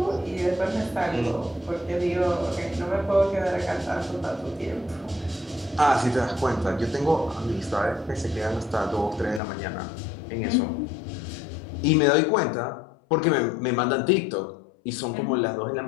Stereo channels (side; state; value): right; drops out; at 9.4 s